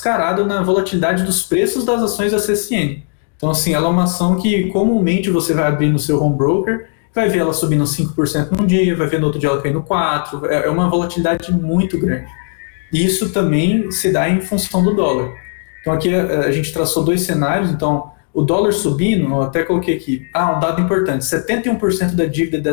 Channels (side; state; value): right; silent; 57 dB below the other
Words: na volatilidade dos preços das ações da CSN. Então, assim, ela é uma ação que comumente você vai abrir no seu home broker, vai ver ela subindo 5% num dia, vai ver no outro dia ela caindo 4%, é uma volatilidade muito grande. E isso também se dá em função do dólar. Então, aqui a gente traçou dois cenários, então... O dólar subindo, eu até coloquei aqui, um dado importante, 71% da dívida da